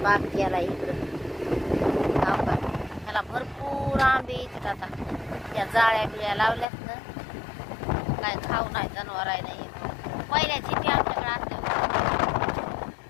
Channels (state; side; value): drops out; right; at 6.7 s